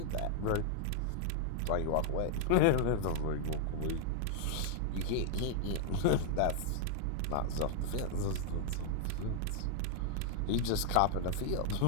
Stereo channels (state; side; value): different; both; correlation 0.00